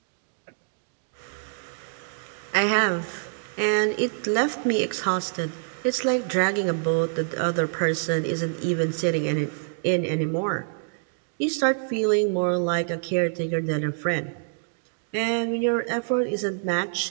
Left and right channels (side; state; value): left; silent; digital silence